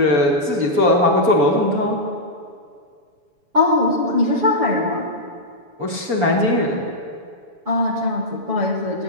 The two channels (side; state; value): left; late; 7.1 ms